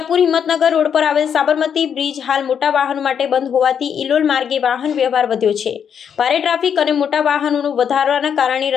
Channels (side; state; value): right; quieter; 7.8 dB